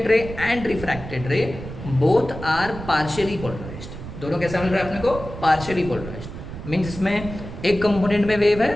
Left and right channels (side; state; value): right; noise; rumble, 11 dB below the sound